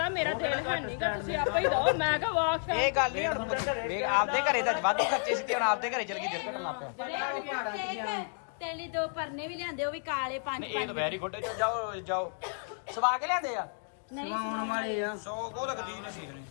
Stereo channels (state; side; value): silent; right; 57 dB below the other